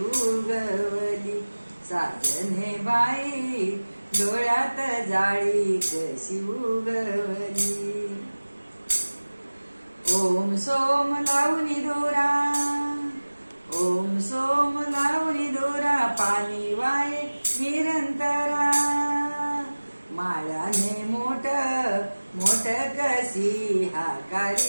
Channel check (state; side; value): inverted; both; correlation -1.00